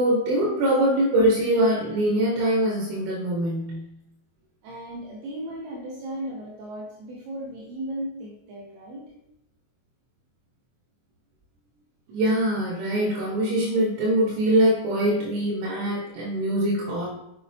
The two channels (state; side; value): late; left; 24 ms